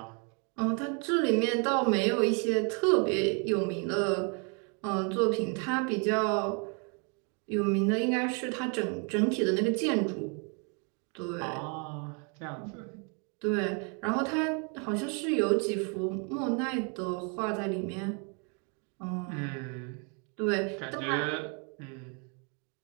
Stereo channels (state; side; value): quieter; left; 36.6 dB